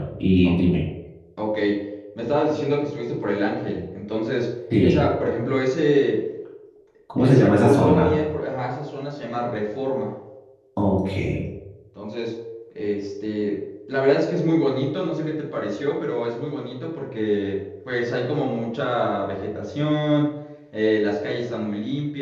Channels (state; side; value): identical; both; correlation 1.00